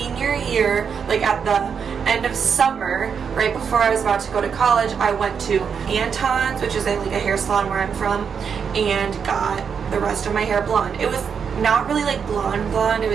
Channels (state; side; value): quieter; left; 6.7 dB